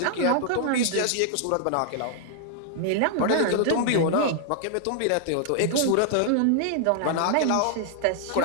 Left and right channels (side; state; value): both; different; correlation 0.00